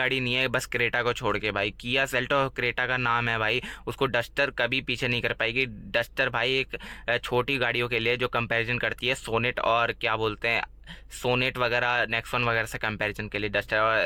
नहीं है बस क्रेटा को छोड़ के। भाई किया सेल्टोस क्रेटा का नाम है भाई, उसको डस्टर कभी पीछे नहीं कर पाएगी। डस्टर भाई एक छोटी गाड़ियों के लिए जो कंपैरिजन करती है सोनेट और क्या बोलते हैं सोनेट वगैरह नेक्सॉन वगैरह से कंपैरिजन के लिए, डस्टर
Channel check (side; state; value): both; identical; correlation 1.00